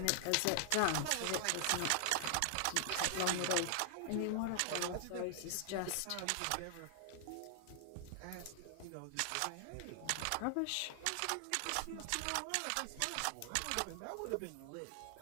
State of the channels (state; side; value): different; both; correlation 0.00